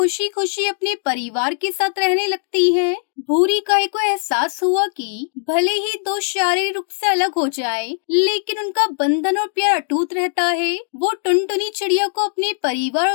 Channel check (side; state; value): right; silent; digital silence